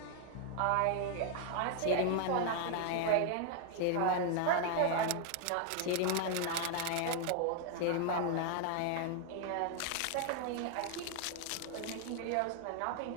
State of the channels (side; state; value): both; different; correlation 0.00